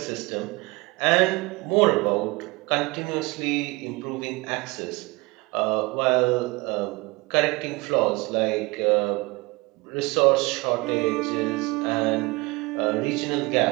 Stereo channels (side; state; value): left; quieter; 24.4 dB